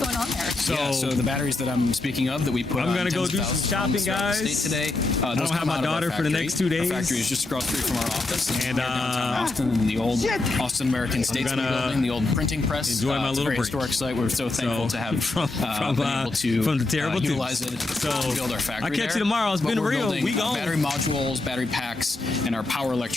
on there. So the batteries that I'm speaking of that we put I'm on gonna go tens of do some thousands of shopping, homes throughout the guys. state today. I Those don't have come my out of our daughter for the factory. next 2 days. Our factory is just across the street from our office. And, We're downtown Austin in the old Austin American Statesman gonna building, the old printing press. enjoy my it's little a very break. historic site. We're so thankful to have been able to from the terrible utilize it So, to build our factory. I'll catch there. you tomorrow. It's But been we're real. building, We gone. battery modules, battery packs, and our power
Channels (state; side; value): quieter; right; 3.1 dB